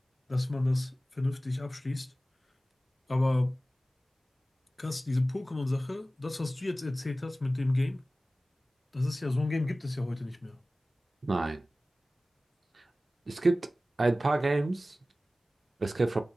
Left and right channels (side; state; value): both; normal; correlation 0.96